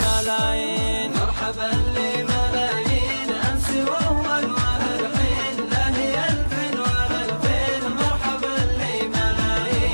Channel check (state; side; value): inverted; both; correlation -1.00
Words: مرحبا لملايين أمس وأول وهالحين، لا هي ألف ولا ألفين. مرحبا